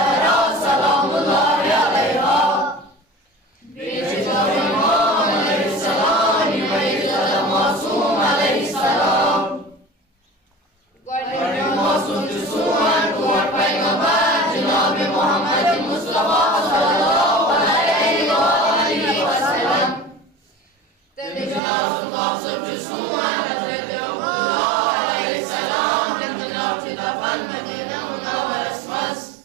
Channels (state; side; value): drops out; left; at 21.6 s